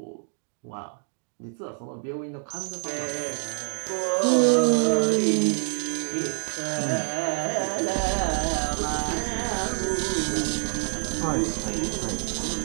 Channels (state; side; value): silent; left; 61 dB below the other